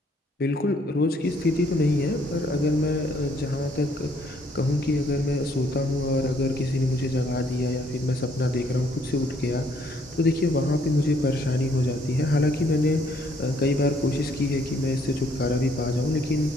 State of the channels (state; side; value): normal; both; correlation 0.66